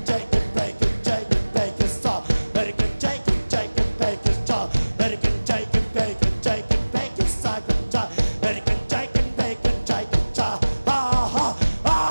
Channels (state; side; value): inverted; both; correlation -1.00